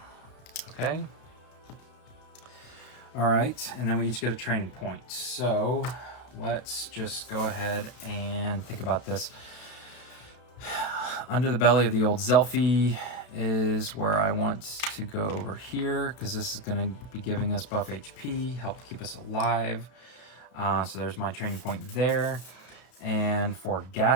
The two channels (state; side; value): late; right; 32 ms